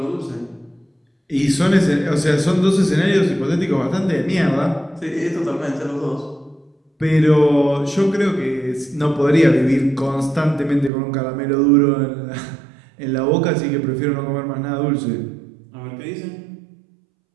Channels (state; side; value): drops out; left; at 10.9 s